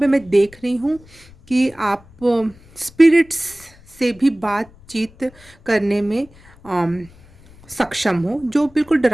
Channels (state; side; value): noise; left; rumble, 25 dB below the sound